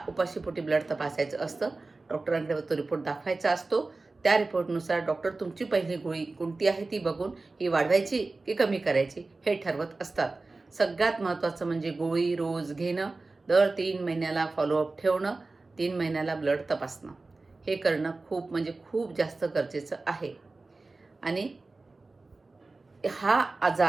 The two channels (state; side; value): quieter; left; 3.5 dB